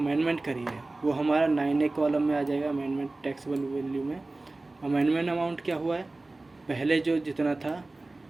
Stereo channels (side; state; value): left; quieter; 3.1 dB